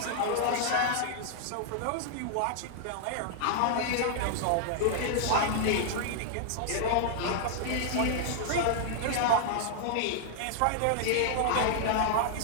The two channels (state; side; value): different; both; correlation -0.01